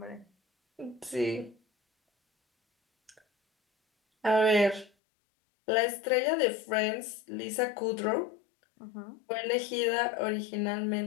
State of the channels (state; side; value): drops out; right; at 4.9 s